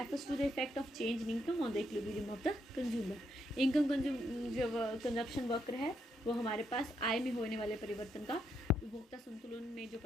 to the effect of change in income on the equilibrium of the consumer. Income जो कंजप्शन वक्र है वो हमारे पास आय में होने वाले परिवर्तन का उपभोक्ता संतुलन में जो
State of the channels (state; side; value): normal; both; correlation 0.78